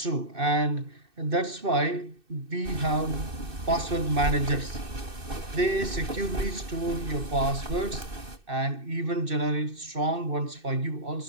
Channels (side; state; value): left; late; 2.6 ms